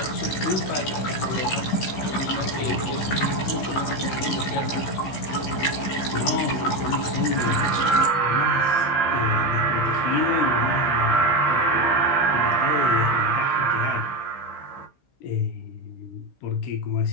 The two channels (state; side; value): late; right; 15 ms